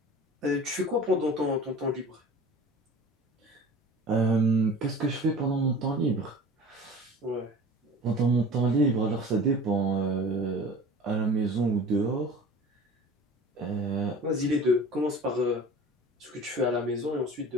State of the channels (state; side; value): normal; both; correlation 0.41